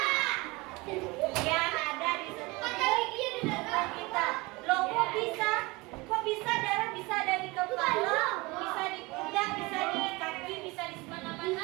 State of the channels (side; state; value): left; quieter; 23.8 dB